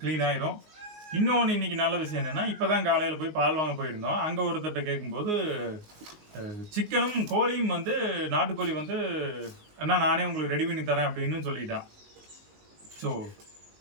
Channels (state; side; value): late; left; 19 ms